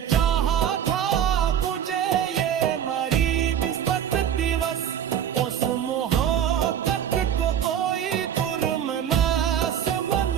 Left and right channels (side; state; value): left; quieter; 9.4 dB